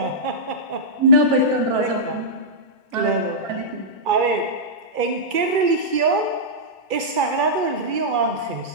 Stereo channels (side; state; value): left; late; 2.4 ms